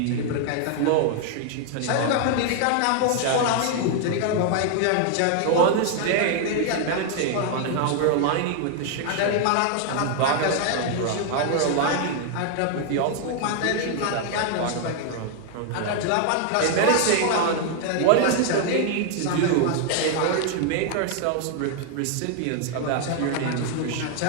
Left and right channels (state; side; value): different; both; correlation 0.00